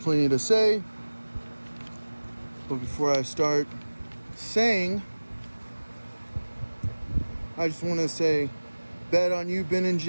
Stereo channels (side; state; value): both; inverted; correlation -1.00